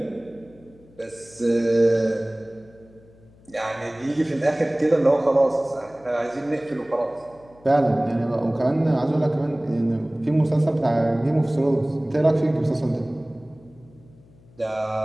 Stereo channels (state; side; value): noise; left; hum, 27 dB below the sound